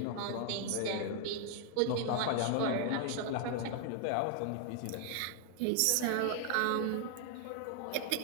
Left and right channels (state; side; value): different; both; correlation 0.00